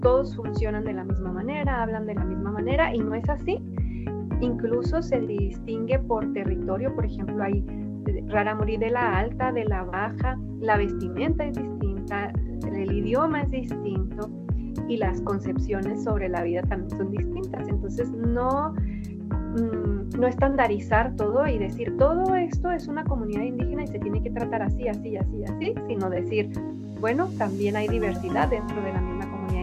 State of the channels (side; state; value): both; identical; correlation 1.00